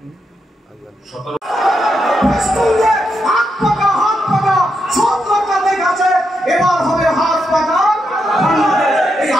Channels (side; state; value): both; normal; correlation 0.83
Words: এবার হবে হাত পাকা। এই